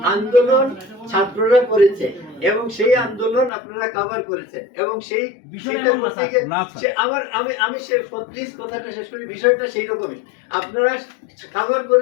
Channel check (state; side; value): drops out; right; at 3.5 s